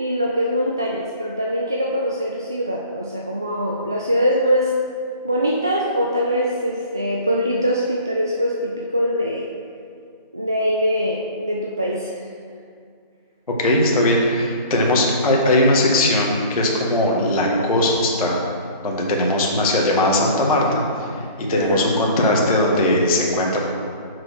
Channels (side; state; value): both; inverted; correlation -0.43